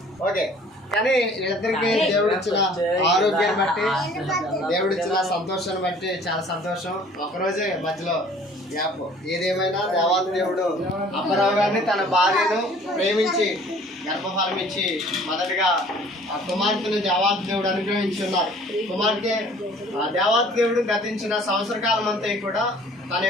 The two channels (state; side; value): normal; both; correlation 0.52